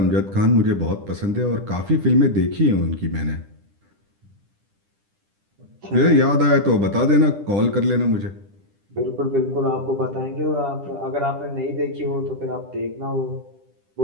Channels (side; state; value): left; late; 10 ms